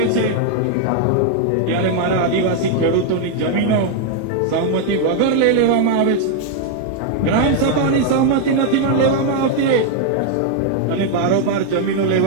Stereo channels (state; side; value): different; both; correlation 0.00